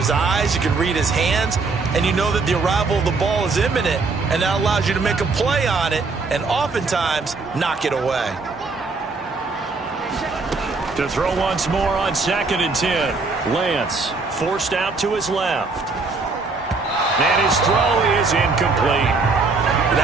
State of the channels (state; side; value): quieter; left; 4.0 dB